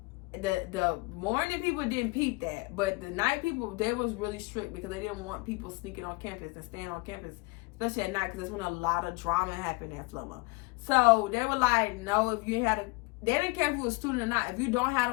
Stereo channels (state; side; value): quieter; right; 26.8 dB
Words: The morning people didn't peep that, but the night people, they was really strict because they didn't want people sneaking on campus and staying on campus, especially at night, because that's when a lot of drama happened at Flomo. So they were like, no, if you had they didn't care if you were a student or not. If you don't have